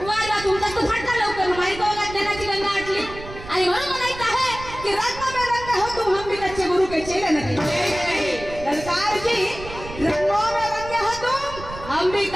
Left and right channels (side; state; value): right; noise; rumble, 13 dB below the sound